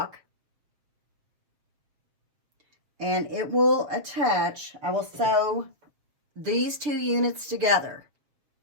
and it will attach. I will sew these 2 units together,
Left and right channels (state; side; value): late; left; 6.8 ms